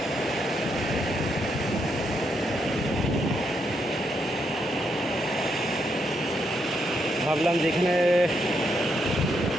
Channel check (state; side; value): normal; both; correlation 0.79